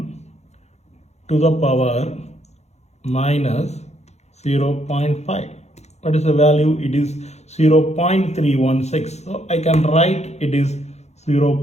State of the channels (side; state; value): right; late; 0.32 ms